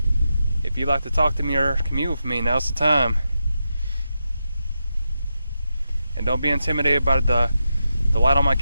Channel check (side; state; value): both; inverted; correlation -0.87